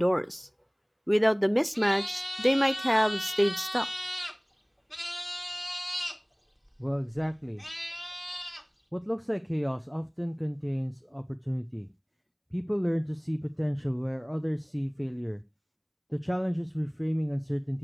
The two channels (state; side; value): identical; both; correlation 1.00